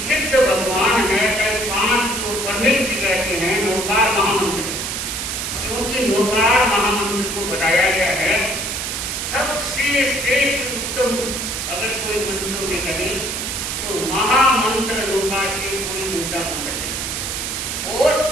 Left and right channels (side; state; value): right; noise; hiss, 3 dB below the sound